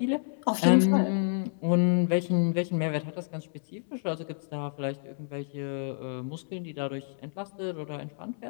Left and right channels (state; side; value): silent; right; digital silence